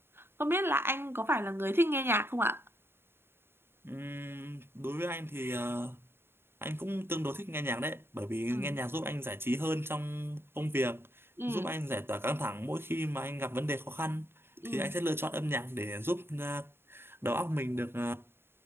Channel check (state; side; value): late; left; 0.11 ms